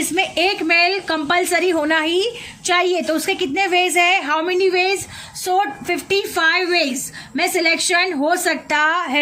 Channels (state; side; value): identical; both; correlation 1.00